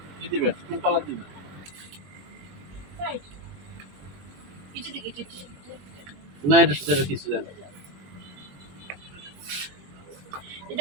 না এটার সাথে কিছু জানি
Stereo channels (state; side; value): late; left; 21 ms